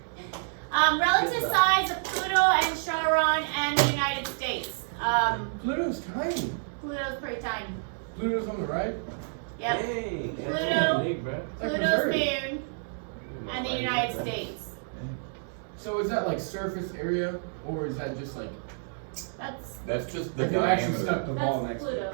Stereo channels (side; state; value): left; silent; digital silence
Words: Relative size of Pluto and Charon and the United States. Pluto's tiny. Pluto's pretty tiny. Pluto's on the right. Yep. Dang, that's Pluto. pretty big, bro. Like Pluto's Missouri. moon and the United States. So is that like surface area, or is that just like That's That's just the like they actually diameter. stuck the ball that's next to Pluto. it?